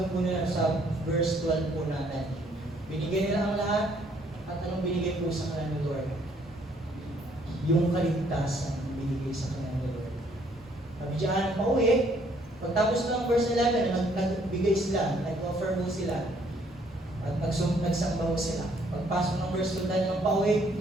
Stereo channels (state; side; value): normal; both; correlation 0.65